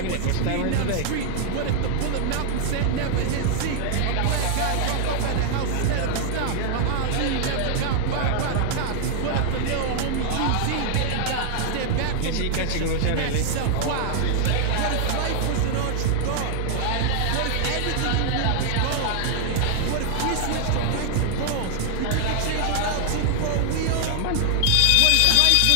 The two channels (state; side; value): different; both; correlation 0.00